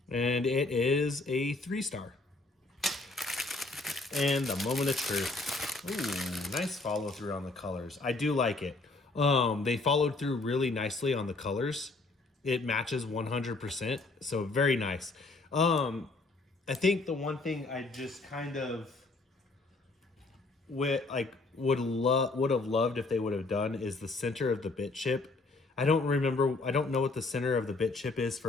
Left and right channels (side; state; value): right; quieter; 3.4 dB